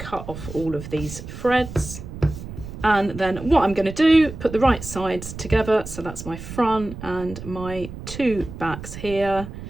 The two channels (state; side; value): noise; right; rumble, 11 dB below the sound